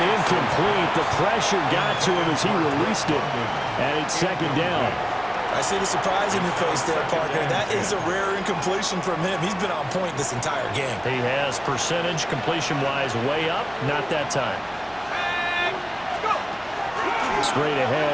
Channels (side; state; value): right; noise; hum, 27 dB below the sound